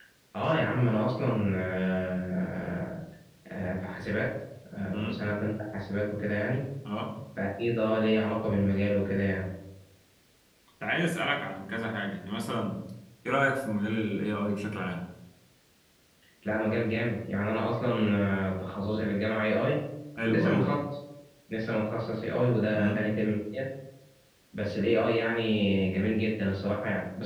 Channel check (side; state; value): both; identical; correlation 1.00